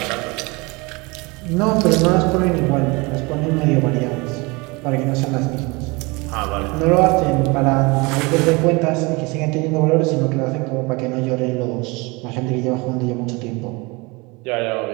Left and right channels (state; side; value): quieter; left; 26.0 dB